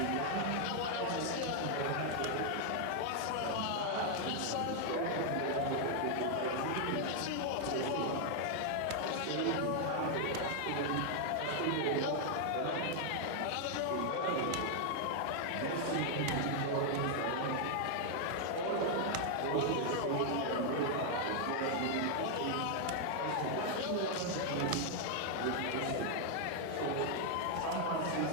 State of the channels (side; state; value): both; different; correlation 0.00